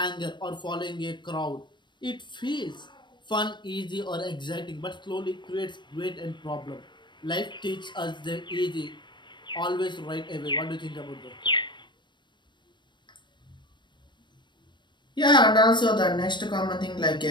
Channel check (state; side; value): late; right; 0.22 ms